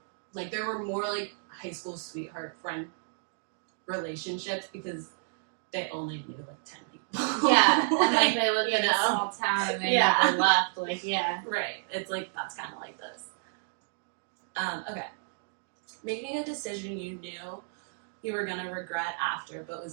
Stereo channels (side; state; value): left; silent; digital silence